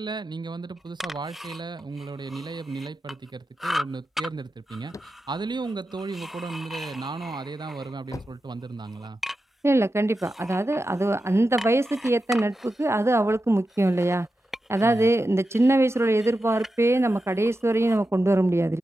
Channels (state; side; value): normal; both; correlation 0.91